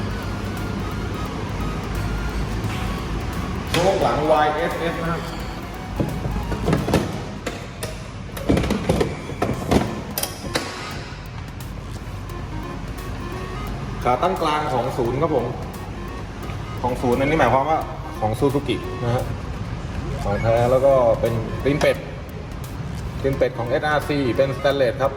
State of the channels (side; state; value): both; identical; correlation 1.00